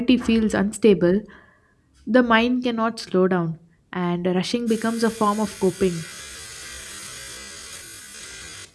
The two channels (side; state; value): both; identical; correlation 1.00